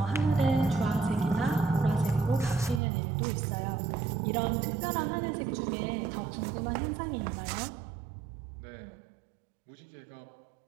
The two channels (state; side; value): drops out; left; at 2.8 s